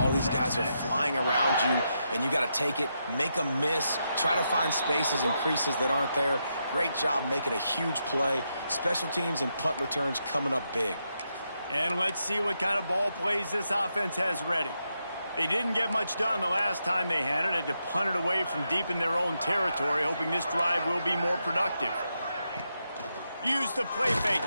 these guys are flying around you, and you got to take it, make them miss, try to find spaces and creases that aren't there. Great job making a huge play. Special teams and punt returns coming up big. And let's see what kind of ball plays this offense has ready. They didn't get much done the last time they had it. Had to punt it away from deep in their own territory, hoping this drive will be more productive. Use the play fake,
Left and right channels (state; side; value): inverted; both; correlation -0.83